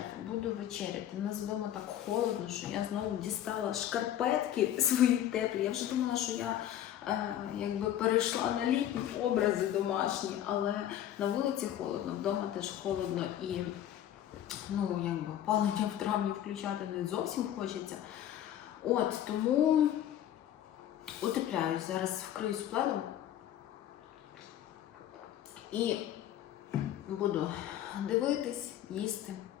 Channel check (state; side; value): quieter; right; 11.4 dB